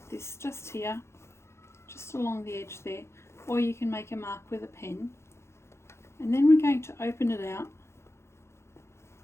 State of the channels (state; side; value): late; right; 0.13 ms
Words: this just here, just along the edge there, or you can make a mark with a pen, and then we're going to open it out